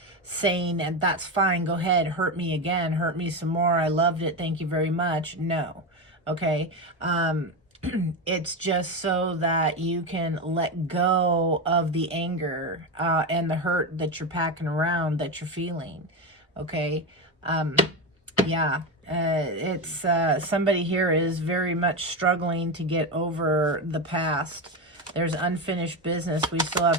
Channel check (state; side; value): normal; both; correlation 0.15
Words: saying, and that's fine, go ahead, hurt me again, hurt me some more, I loved it, thank you very much. No. Okay? It's just so that you can let go of the anger and the hurt that you're packing around, that you're feeling. Okay? Yeah. It's somebody here is very much struggling to get over the past. There's unfinished business. We still